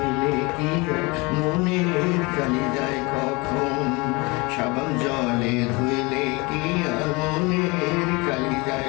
কি আর মনের কালি যায় কখন? সাবান জলে ধুইলে কি আর মনের কালি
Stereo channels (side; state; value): right; quieter; 26.1 dB